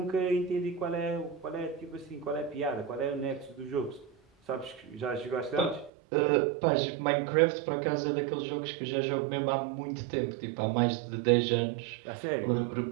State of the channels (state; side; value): drops out; left; at 5.9 s